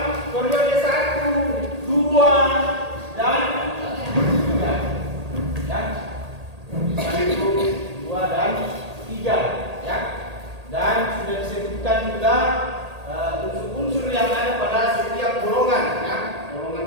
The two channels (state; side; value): late; left; 1.8 ms